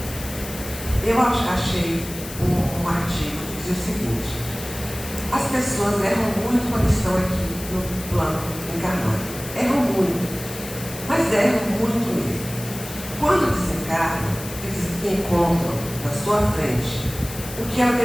eu achei um artigo que dizia o seguinte: as pessoas erram muito quando estão aqui no plano encarnado. Erram muito, mas erram muito mesmo. Quando desencarnam, eles encontram na sua frente o que ela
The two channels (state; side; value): noise; left; hiss, 12 dB below the sound